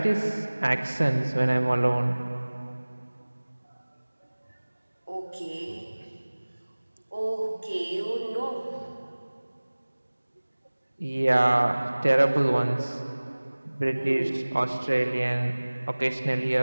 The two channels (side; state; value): both; inverted; correlation -1.00